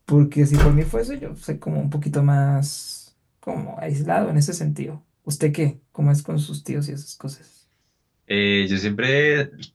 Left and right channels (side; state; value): both; identical; correlation 1.00